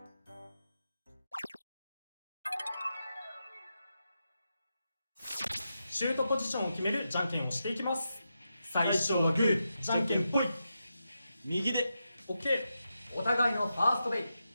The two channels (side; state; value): both; inverted; correlation -0.88